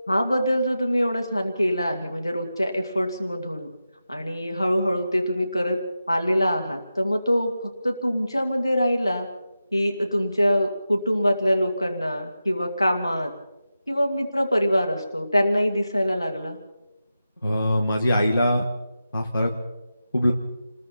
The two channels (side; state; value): both; inverted; correlation -0.91